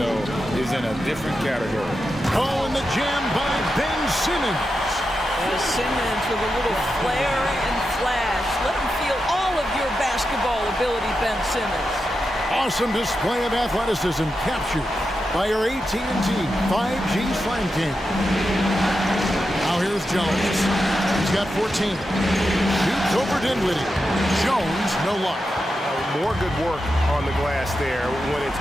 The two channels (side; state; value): both; normal; correlation 0.89